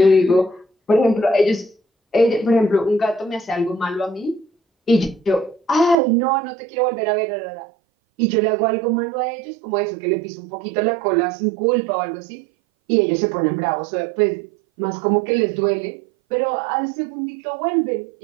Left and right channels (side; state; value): left; drops out; at 6.0 s